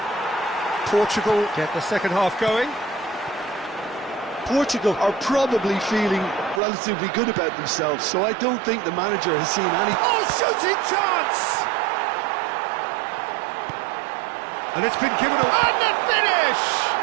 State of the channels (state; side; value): drops out; left; at 6.6 s